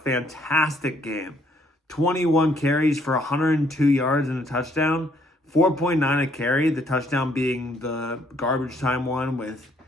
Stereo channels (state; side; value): normal; both; correlation 0.67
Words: fantastic game. 21 carries for 102 yards and a touchdown. 4.9 a carry, the touchdown being the garbage time one with